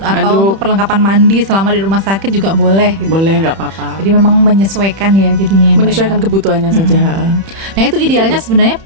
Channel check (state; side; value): late; left; 31 ms